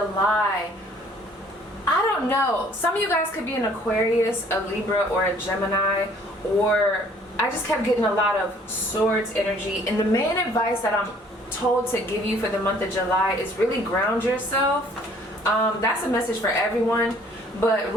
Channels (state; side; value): normal; both; correlation 0.58